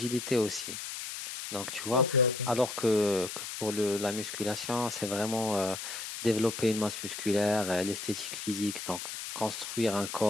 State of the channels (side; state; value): left; noise; hiss, 7 dB below the sound